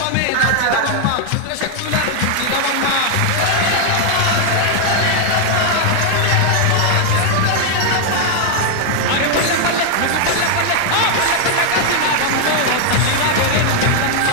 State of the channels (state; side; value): different; both; correlation 0.00